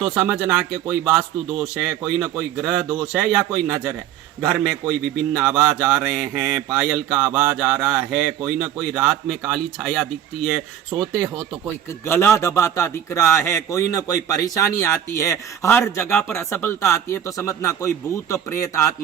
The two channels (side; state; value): left; quieter; 10.4 dB